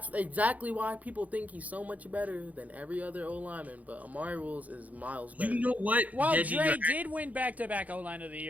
exactly why people think he's so much better than every other O-lineman, but Amari Rules is miles better. You know what? Well, Dre did win back-to-back O-line of the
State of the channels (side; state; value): left; late; 0.074 ms